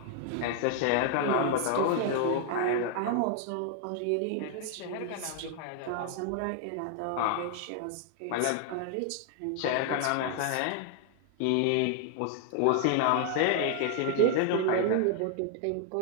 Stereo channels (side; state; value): both; different; correlation 0.00